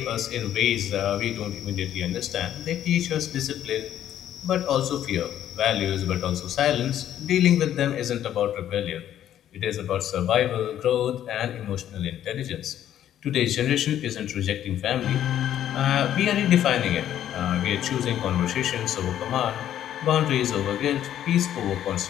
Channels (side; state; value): right; quieter; 11.1 dB